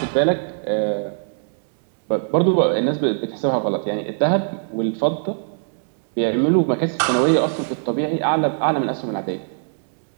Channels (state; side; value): silent; left; digital silence